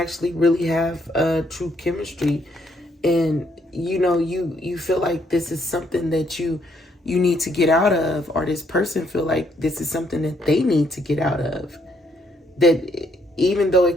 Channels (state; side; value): normal; both; correlation 0.71